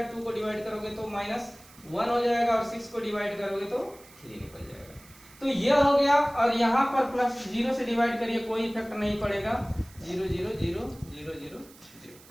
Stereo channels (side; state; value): right; noise; hiss, 23 dB below the sound